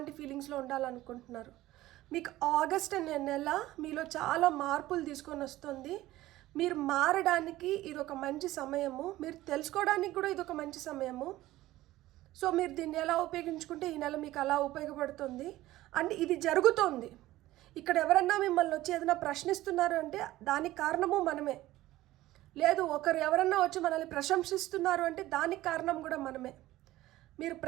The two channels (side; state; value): left; quieter; 16.3 dB